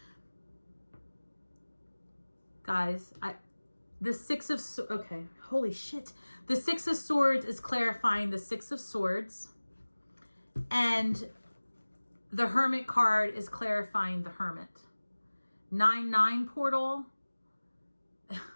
Guys, the Six of Swords. Okay, holy shit. The Six of Swords is clarifying the Six of Swords. And the Hermit card is clarifying the Hermit. 9-9 portal.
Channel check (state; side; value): inverted; both; correlation -1.00